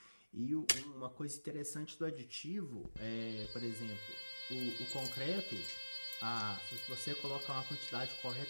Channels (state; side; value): inverted; both; correlation -1.00